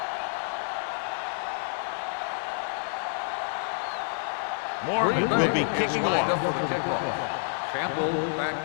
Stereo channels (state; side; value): silent; right; digital silence